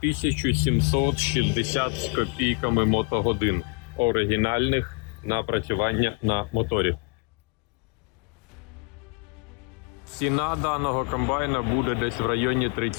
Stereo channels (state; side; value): quieter; right; 32.2 dB